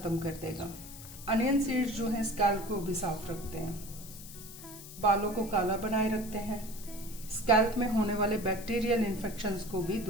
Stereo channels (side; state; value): left; noise; hiss, 15 dB below the sound